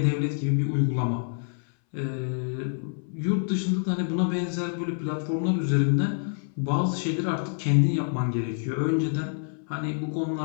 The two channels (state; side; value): silent; right; 60 dB below the other